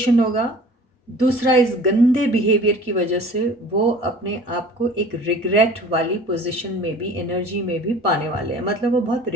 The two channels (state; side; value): normal; both; correlation 0.45